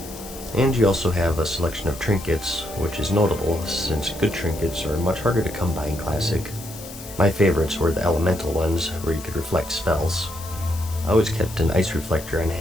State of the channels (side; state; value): left; noise; hiss, 15 dB below the sound